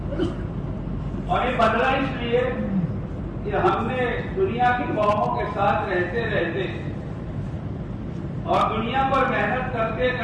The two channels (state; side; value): identical; both; correlation 1.00